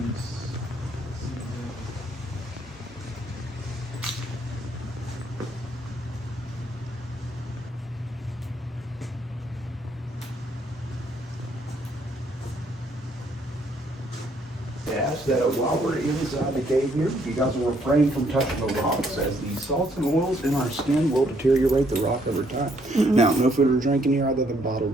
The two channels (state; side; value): normal; both; correlation 0.69